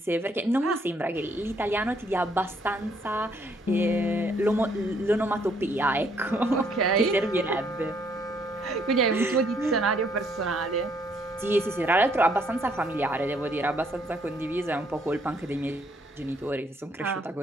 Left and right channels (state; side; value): normal; both; correlation 0.68